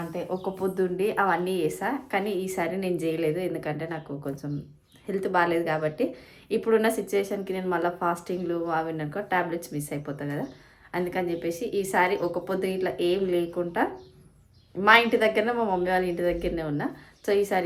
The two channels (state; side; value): identical; both; correlation 1.00